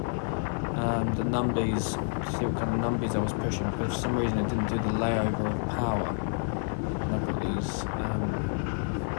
the numbies, to see what kind of numbies I was pushing, because for some reason it didn't do the layover of power, and I've got these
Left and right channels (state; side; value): silent; right; digital silence